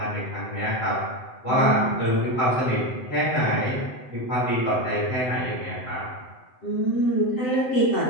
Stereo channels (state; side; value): late; right; 7.7 ms